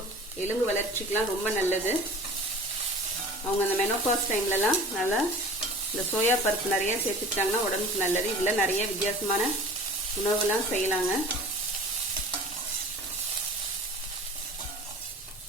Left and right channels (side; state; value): both; normal; correlation 0.41